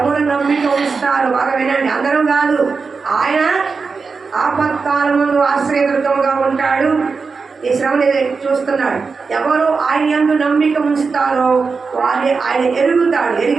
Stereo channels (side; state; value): left; quieter; 4.8 dB